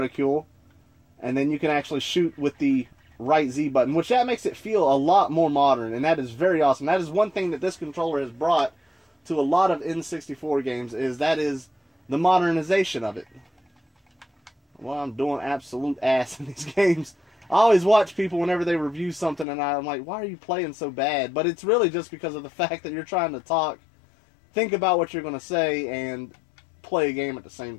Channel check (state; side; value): drops out; right; at 19.5 s